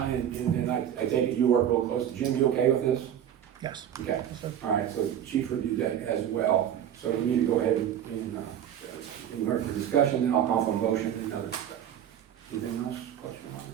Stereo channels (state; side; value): quieter; left; 10.0 dB